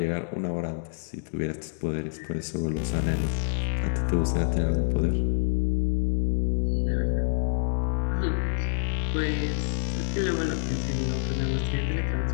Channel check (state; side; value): silent; right; digital silence